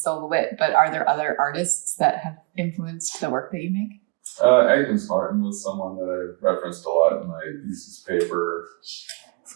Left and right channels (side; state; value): left; quieter; 28.7 dB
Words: but are there other artists that have influenced the work that you make? Agnes Martin was someone that I referenced a lot in my thesis paper.